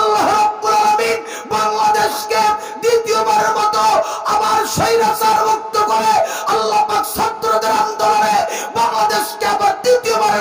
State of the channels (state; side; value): identical; both; correlation 1.00